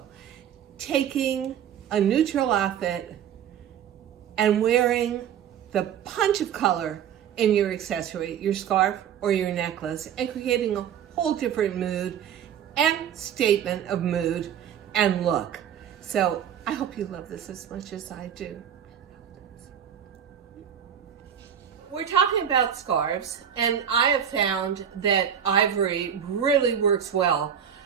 Taking a neutral outfit and wearing the punch of color in your accessory, your scarf or your necklace, and creating a whole different mood and statement of mood and look. So I hope you love this as much as I do. We're talking about scarves, and I have found that ivory really works well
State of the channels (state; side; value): quieter; left; 8.9 dB